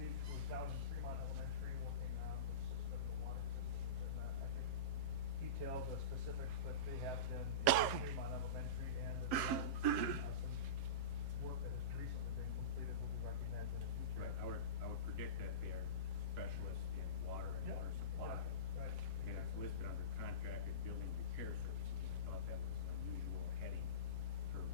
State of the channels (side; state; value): left; late; 7.6 ms